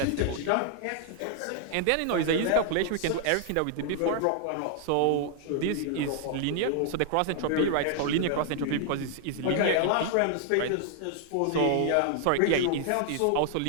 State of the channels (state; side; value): different; both; correlation 0.00